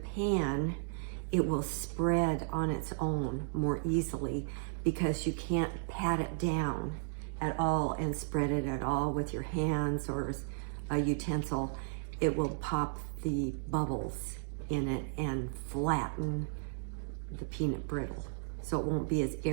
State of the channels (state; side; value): silent; left; digital silence